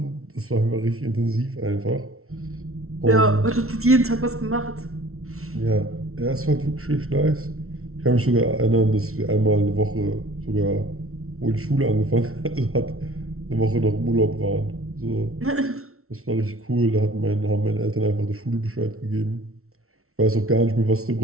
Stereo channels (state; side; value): late; left; 0.63 ms